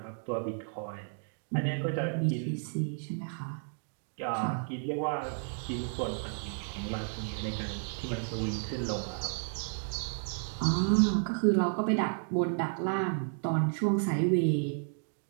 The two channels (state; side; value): silent; left; 56 dB below the other